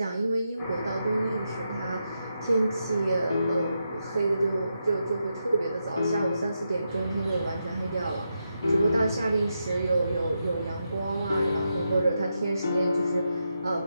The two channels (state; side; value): inverted; both; correlation -0.85